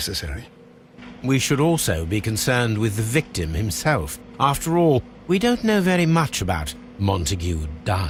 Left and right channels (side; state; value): both; identical; correlation 1.00